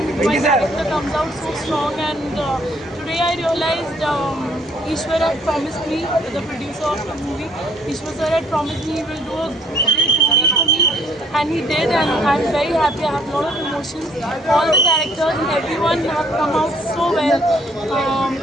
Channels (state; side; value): normal; both; correlation 0.63